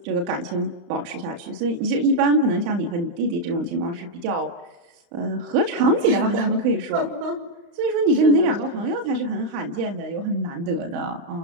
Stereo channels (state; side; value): late; left; 35 ms